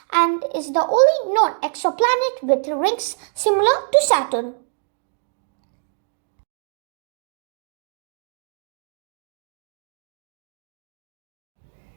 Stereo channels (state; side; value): silent; left; digital silence